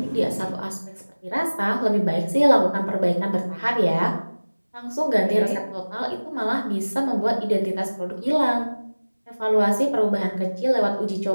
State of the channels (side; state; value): both; inverted; correlation -1.00